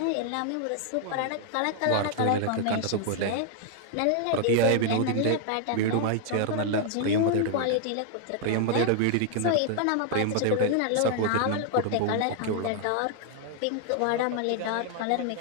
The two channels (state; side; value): different; both; correlation 0.00